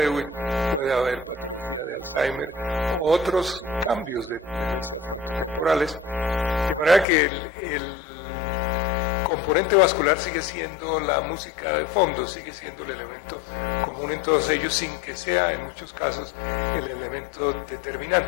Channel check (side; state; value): right; drops out; at 7.1 s